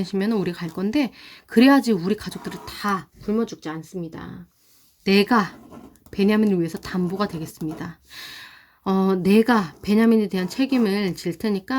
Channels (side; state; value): both; identical; correlation 1.00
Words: 우리 갈 건데, 그래야지 우리 가족들이 다 굶어 죽지 않습니다. 내가 베냐민을 위해서 담보가 되겠습니다. 내가 베냐민에 대한 책임을 질